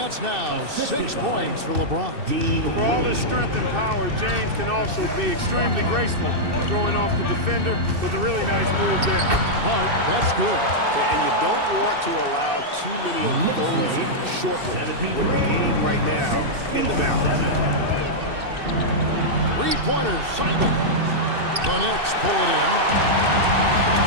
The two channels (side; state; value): left; late; 2.6 ms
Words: now 6 points for LeBron. For all his strength and power, James can also be extremely graceful, throwing off the defender with a really nice move there. Hart, that's good. And you don't want to allow too many of those short ones with the game right now in the balance. Three-pointers, Simon. The Knicks pull it in.